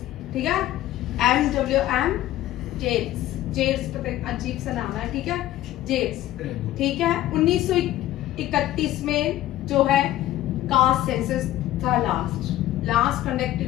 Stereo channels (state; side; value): quieter; right; 14.3 dB